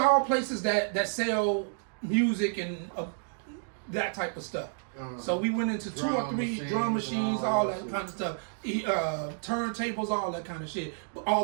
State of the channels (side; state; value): left; silent; digital silence